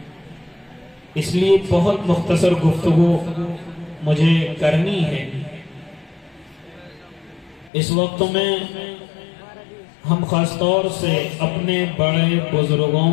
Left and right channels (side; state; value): right; drops out; at 7.7 s